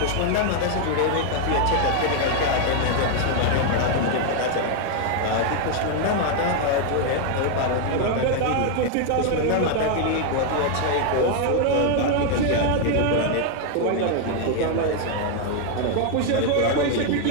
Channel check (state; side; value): different; both; correlation 0.00